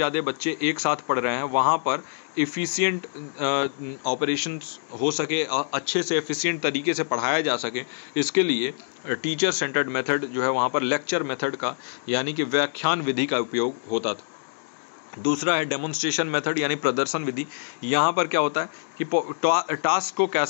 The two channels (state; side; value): silent; right; digital silence